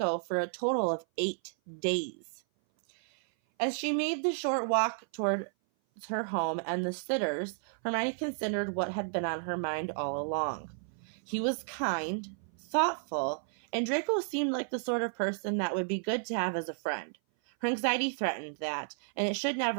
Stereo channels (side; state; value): left; silent; 56 dB below the other